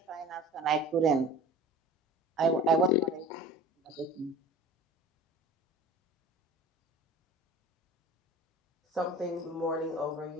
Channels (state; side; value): normal; both; correlation 0.40